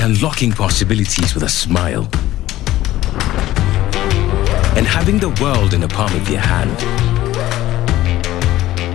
unlocking possibilities with a smile. And having the world in the palm of your hand.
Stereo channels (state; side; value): quieter; right; 15.2 dB